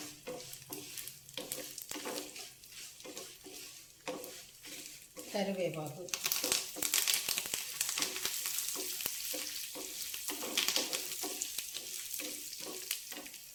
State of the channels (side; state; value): both; identical; correlation 1.00